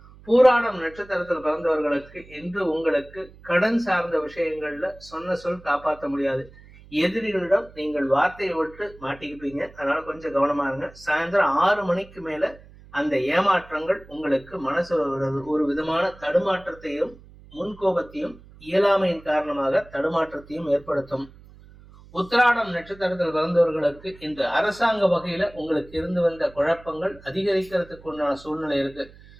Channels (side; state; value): right; noise; hum, 22 dB below the sound